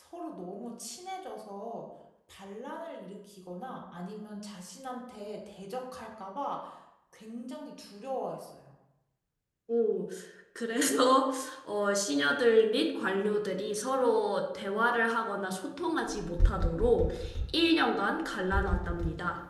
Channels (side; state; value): both; identical; correlation 1.00